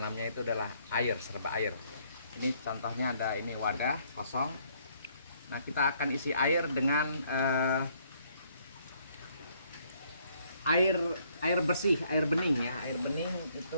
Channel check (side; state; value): both; inverted; correlation -0.67